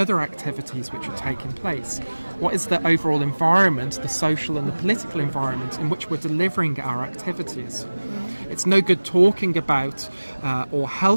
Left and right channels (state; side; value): inverted; both; correlation -1.00